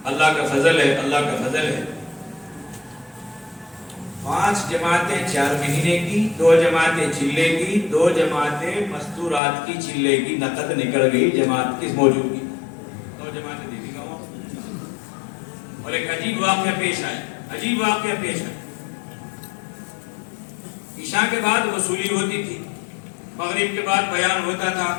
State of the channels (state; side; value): drops out; right; at 9.4 s